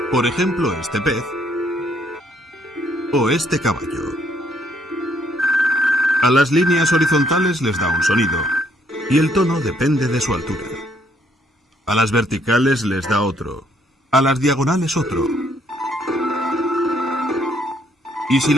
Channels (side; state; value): both; normal; correlation 0.68